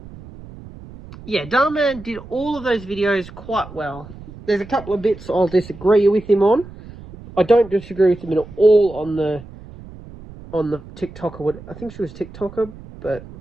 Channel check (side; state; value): right; noise; rumble, 17 dB below the sound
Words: yeah, Dhar Mann did all of those videos quite well. There's a couple of bits I'll disagree with him on. I don't disagree with him at all on the TikToker. I think she was TikToker, but